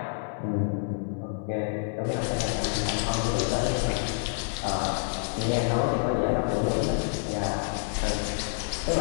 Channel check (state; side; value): silent; right; 59 dB below the other